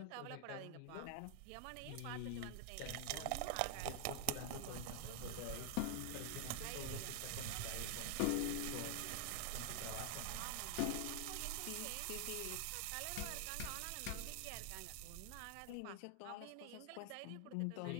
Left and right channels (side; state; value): both; different; correlation 0.00